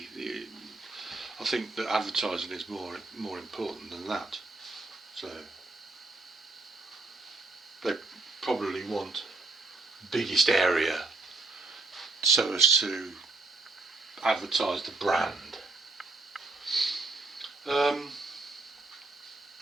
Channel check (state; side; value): quieter; left; 3.4 dB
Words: I think that advertising is more important than that. So they probably want biggest area so as to advertise the brand.